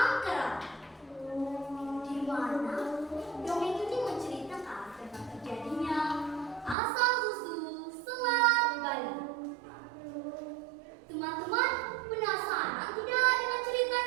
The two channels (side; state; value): left; drops out; at 6.8 s